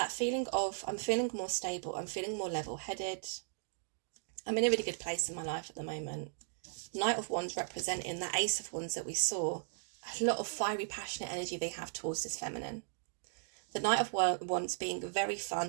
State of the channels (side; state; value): left; silent; digital silence